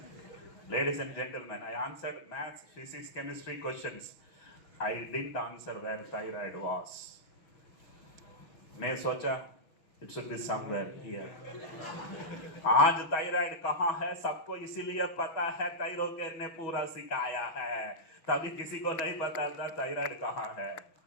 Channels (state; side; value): late; right; 6.2 ms